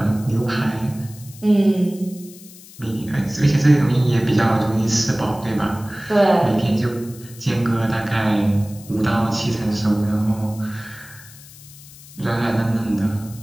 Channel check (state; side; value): noise; left; hiss, 20 dB below the sound